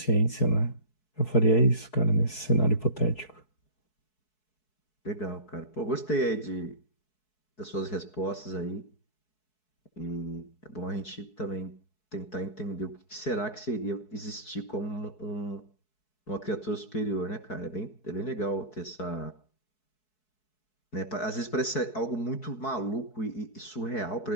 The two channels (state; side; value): late; right; 4.7 ms